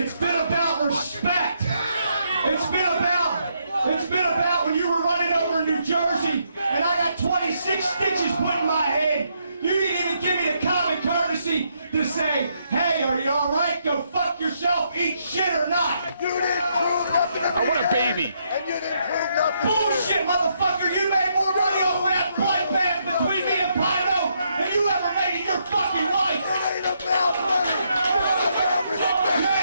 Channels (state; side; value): inverted; both; correlation -0.76